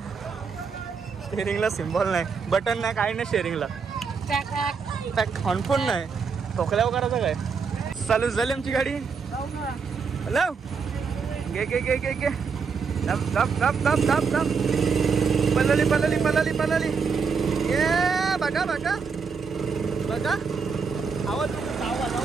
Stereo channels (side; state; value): left; quieter; 5.6 dB